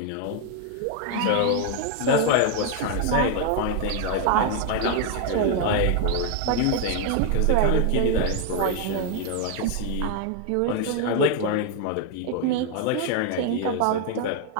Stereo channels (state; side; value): different; both; correlation 0.00